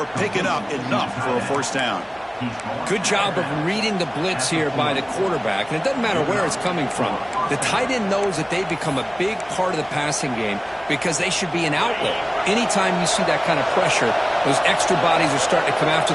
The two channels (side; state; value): both; identical; correlation 1.00